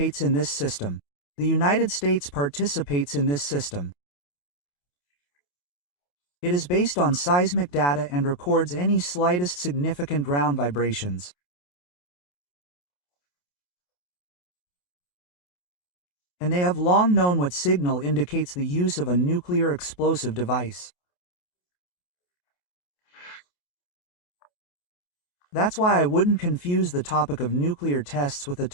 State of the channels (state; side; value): late; right; 28 ms